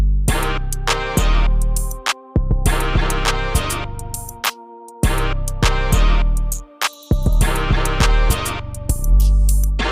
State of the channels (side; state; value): both; identical; correlation 1.00